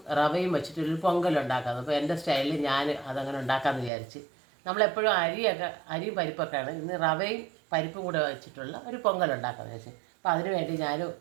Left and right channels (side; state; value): left; drops out; at 3.9 s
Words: റവയും വെച്ചിട്ടൊരു പൊങ്കലുണ്ടാക്കുന്നത്. അപ്പോൾ എൻ്റെ സ്റ്റൈലിൽ ഞാൻ അതങ്ങനെ ഉണ്ടാക്കാമെന്ന് വിചാരിച്ച്. നമ്മളെപ്പോഴും അരിയും പരിപ്പൊക്കെയാണ്. ഇന്ന് റവയും പരിപ്പും കൂടെ വെച്ചിട്ടുള്ള ഒരു പൊങ്കലുണ്ടാക്കാമെന്ന് വെച്ചാൽ. അപ്പോൾ അതിന് വേണ്ടി ഞാൻ